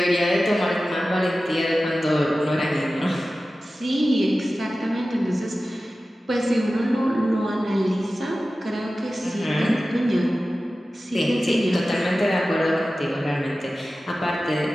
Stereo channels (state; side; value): normal; both; correlation 0.95